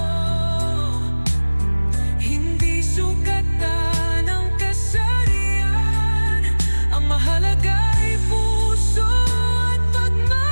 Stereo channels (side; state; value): both; inverted; correlation -1.00